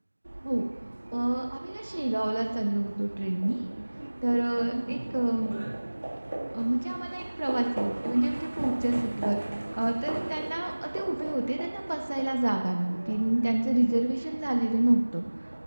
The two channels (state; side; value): inverted; both; correlation -1.00